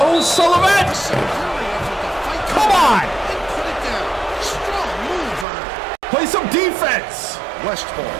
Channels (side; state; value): left; drops out; at 5.5 s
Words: Sullivan! Come on! Play some defense!